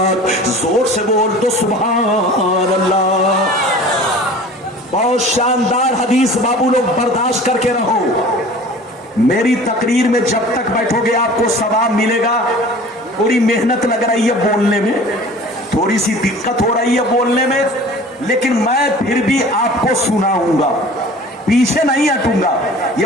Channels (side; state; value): both; normal; correlation 0.43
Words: زور سے بول دو سبحان اللہ۔ بہت شاندار حدیث، بابو لوگ برداشت کر کے رہو۔ میری تقریر میں جب تک بیٹھو گے آپ کو ثواب ملے گا۔ تھوڑی محنت لگ رہی ہے بولنے میں، تھوڑی سی دقت ہو رہی ہے بولنے میں، لیکن میں پھر بھی آپ کو سناؤں گا، پیچھے نہیں ہٹوں گا۔ یہ